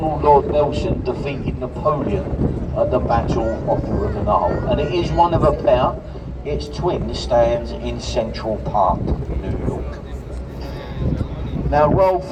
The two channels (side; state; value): both; identical; correlation 1.00